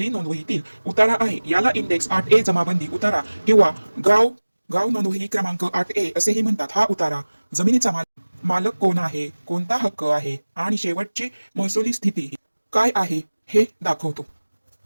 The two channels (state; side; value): inverted; both; correlation -1.00